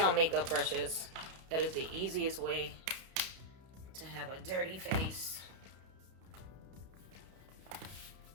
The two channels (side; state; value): left; late; 31 ms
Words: makeup brushes, that is the easiest way to have a dirty face.